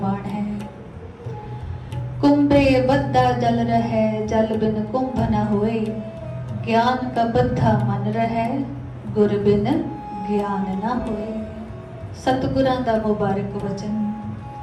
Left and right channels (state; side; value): identical; both; correlation 1.00